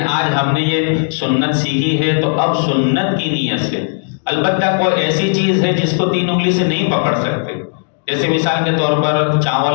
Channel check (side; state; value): right; silent; digital silence